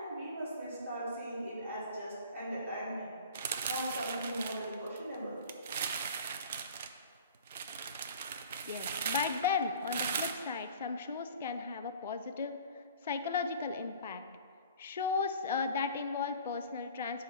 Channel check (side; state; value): both; inverted; correlation -0.44